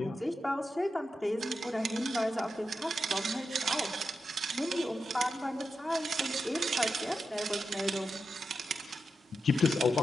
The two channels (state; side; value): normal; both; correlation 0.88